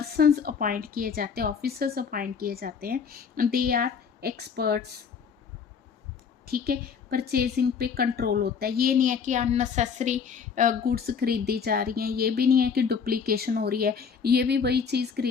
अपॉइंट किए जाते हैं, ऑफिसर्स अपॉइंट किए जाते हैं, दे आर एक्सपर्ट्स। ठीक है, परचेजिंग पे कंट्रोल होता है। ये नहीं है कि अननेसेसरी गुड्स खरीदी जा रही हैं, ये भी नहीं है कि डुप्लीकेशन हो रही है, ये भी वही चीज़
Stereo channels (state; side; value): quieter; right; 6.4 dB